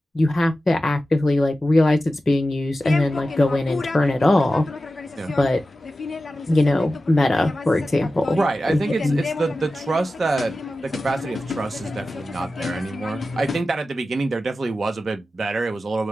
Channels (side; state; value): both; normal; correlation 0.94